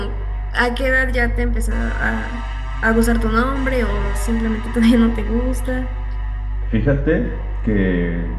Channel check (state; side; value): identical; both; correlation 1.00